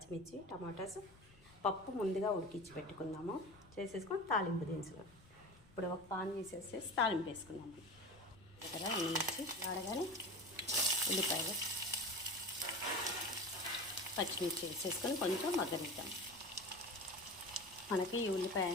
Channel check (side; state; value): left; noise; rumble, 24 dB below the sound